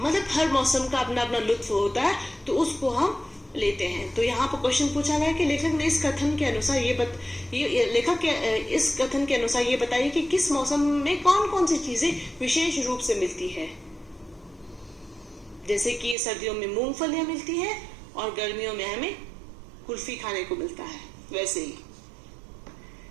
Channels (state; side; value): drops out; left; at 16.2 s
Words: हर मौसम का अपना अपना लुत्फ होता है, तो उसको हम लेते हैं। तो यहाँ पर क्वेश्चन पूछा गया कि लेखक ने इस कथन के अनुसार इस कथन के अनुसार ये बताइए कि किस मौसम में कौन कौन सी चीजें विशेष रूप से मिलती है। जैसे कि सर्दियों में मूंगफलियां मिलती है और गर्मियों में हमें कुल्फी खाने को मिलता है। वैसे ही